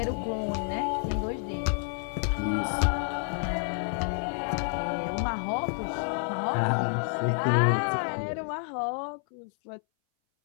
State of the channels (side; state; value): right; silent; 59 dB below the other